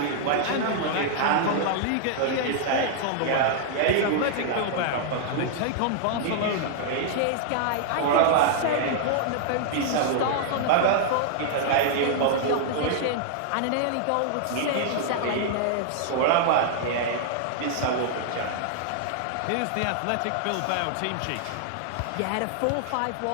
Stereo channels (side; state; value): both; different; correlation -0.01